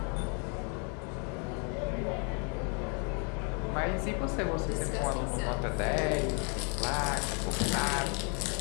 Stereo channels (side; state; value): right; quieter; 37.6 dB